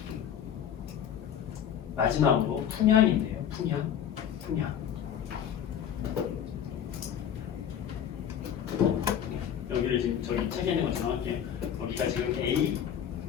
마지막으로 풍향인데요. 풍향. 여기를 지금 저기 책에 있는 것처럼 이렇게 여기가 지금 A,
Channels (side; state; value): right; quieter; 9.3 dB